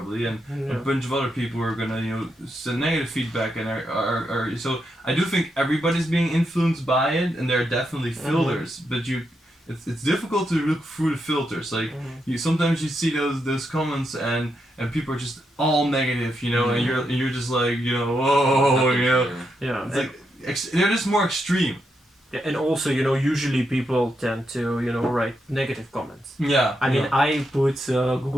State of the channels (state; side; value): normal; both; correlation 0.82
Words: and a bunch of other people who are gonna send negative feedback and are so I do think everybody's being influenced by it, and there are definitely filters, but it's difficult to look through the filters. Like sometimes you see those comments and people are just all negative, you know, and you're just like, you know, whoa, you know, it's like they're just more extreme. Yeah, and also, you know, usually people tend to, you know, write negative comments. Yeah. I mean, I put